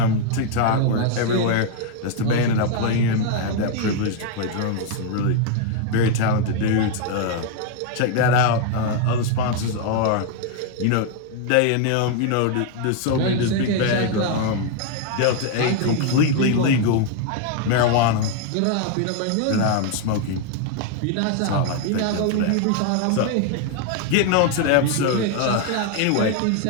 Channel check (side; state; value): both; different; correlation 0.00